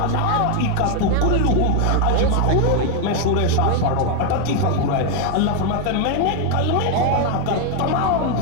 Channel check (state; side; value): different; both; correlation 0.01